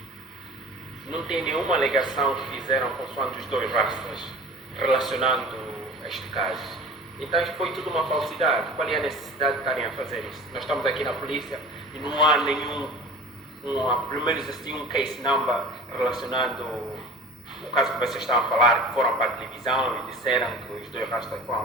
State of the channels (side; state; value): both; normal; correlation 0.40